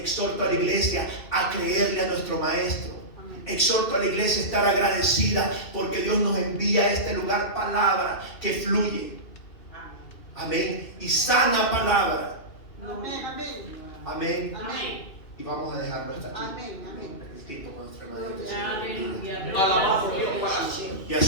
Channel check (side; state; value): right; late; 2.5 ms